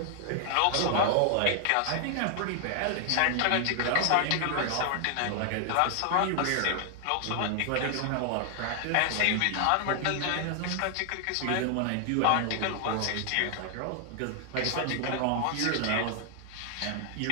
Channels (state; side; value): different; both; correlation 0.00